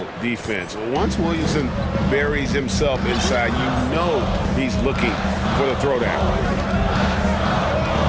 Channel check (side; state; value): both; identical; correlation 1.00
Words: defense. Once Williamson buries himself inside, you know he's looking for the throwdown.